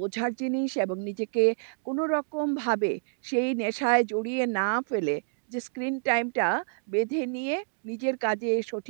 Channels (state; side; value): silent; left; digital silence